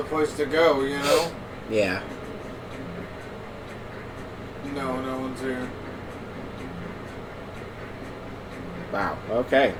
place to go, you know? Yeah. No, no one's here. Wow. Okay.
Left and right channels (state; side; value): identical; both; correlation 1.00